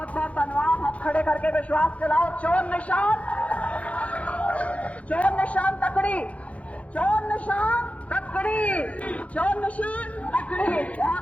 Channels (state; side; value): late; right; 0.065 ms